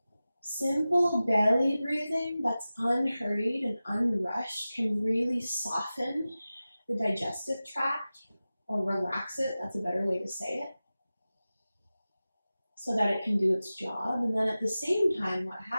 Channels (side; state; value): both; inverted; correlation -0.96